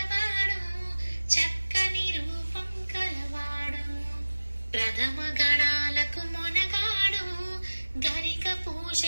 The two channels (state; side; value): inverted; both; correlation -1.00